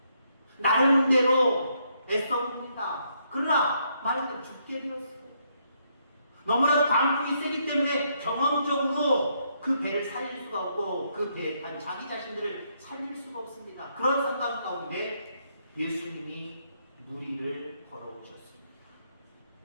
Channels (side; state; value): both; inverted; correlation -0.74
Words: 나름대로 애써봅니다. 그러나 말하자면 죽게 되었어. 너무나도 방풍이 세기 때문에 경험적으로 그 배를 살릴 수가 없고 그 배에 탄 자기 자신들을 살릴 수가 없습니다. 그런 상황 가운데 예수님이 무리를 걸어오셨습니다.